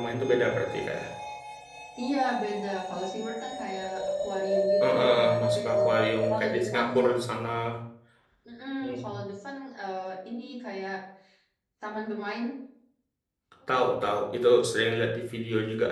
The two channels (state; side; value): identical; both; correlation 1.00